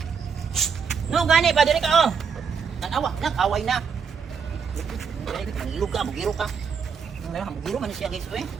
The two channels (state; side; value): quieter; left; 6.2 dB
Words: No gani pa diri ka oh. Nag-away na. Mangilog ka, bugiro ka. Mugiro man siya guys oy.